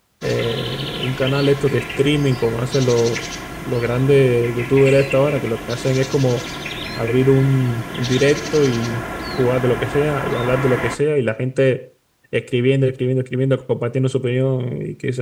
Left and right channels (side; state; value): both; identical; correlation 1.00